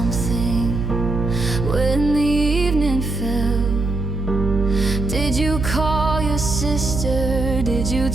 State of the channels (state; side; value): noise; right; hum, 2 dB below the sound